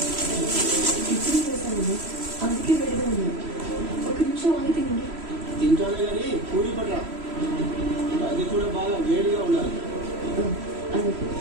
ఇప్పుడే వేసాను, అందుకే వేడిగా ఉంది. ఒక నిమిషం ఆగి తినండి. తింటానే కానీ పూరి పట్రా, అది కూడా బాగా వేడిగా ఉండాలి.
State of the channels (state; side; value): late; left; 3.0 ms